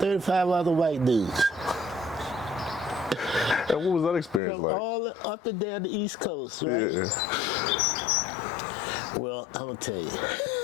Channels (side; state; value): right; drops out; at 4.4 s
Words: other white dudes. And what was that experience From like? all up and down the East Coast, right? Yeah. Well, I'm gonna tell you,